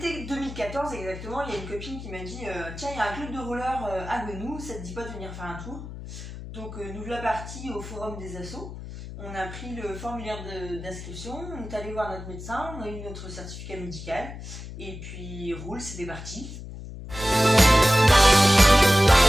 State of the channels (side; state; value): left; noise; hum, 11 dB below the sound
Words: 2014 exactement, il y a une copine qui m'a dit tiens, il y a un club de roller à Gonou, ça te dit pas de venir faire un tour? Donc nous voilà partis au forum des assos. On a pris le formulaire d'inscription, on est allé voir notre médecin, on a eu notre certificat médical, et puis roule, c'était parti.